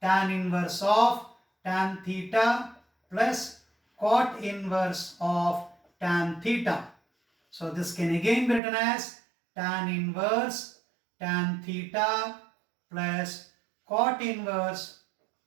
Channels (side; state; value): left; drops out; at 8.6 s